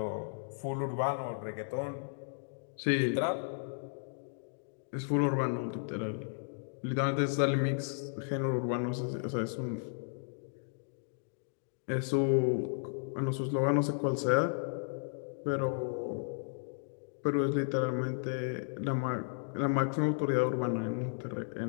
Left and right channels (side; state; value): right; silent; digital silence